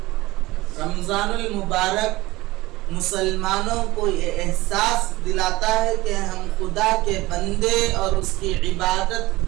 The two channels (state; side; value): quieter; left; 19.6 dB